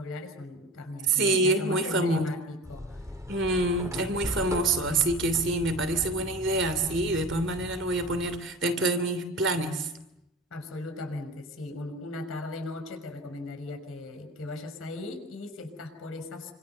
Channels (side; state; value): both; normal; correlation 0.36